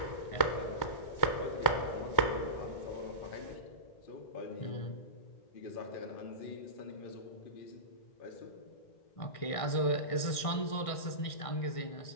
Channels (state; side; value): late; right; 1.6 ms